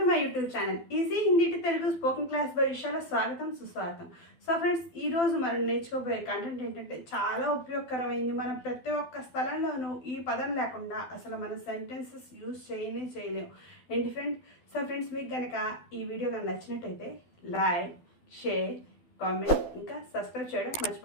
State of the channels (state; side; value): late; right; 12 ms